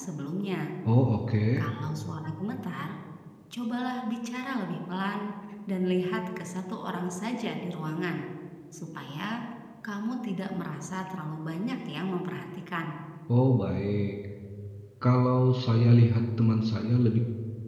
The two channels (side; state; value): both; identical; correlation 1.00